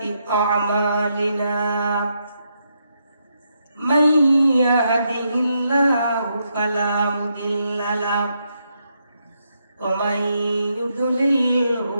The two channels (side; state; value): both; inverted; correlation -0.80